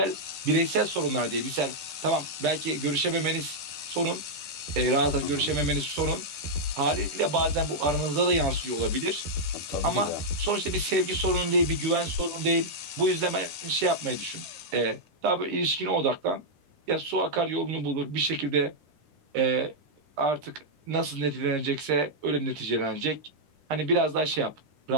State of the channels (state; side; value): late; left; 10 ms